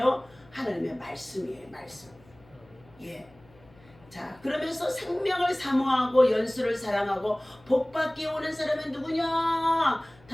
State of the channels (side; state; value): left; noise; hum, 27 dB below the sound